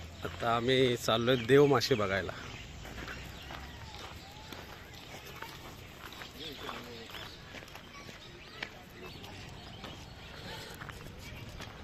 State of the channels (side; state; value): both; identical; correlation 1.00